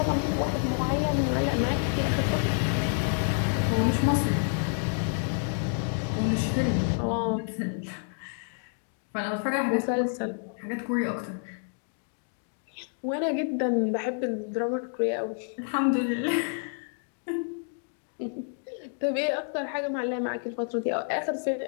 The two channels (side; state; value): right; silent; 59 dB below the other